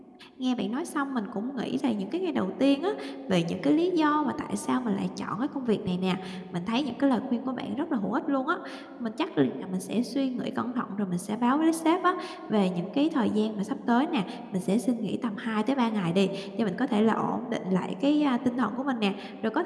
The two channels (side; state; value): both; identical; correlation 1.00